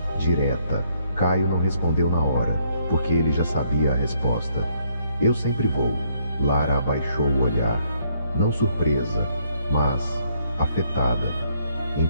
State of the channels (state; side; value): inverted; both; correlation -0.69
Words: direta. Caio não respondeu na hora, porque ele já sabia a resposta. Eu sempre vou. Lara abaixou o olhar, não surpresa, mas afetada.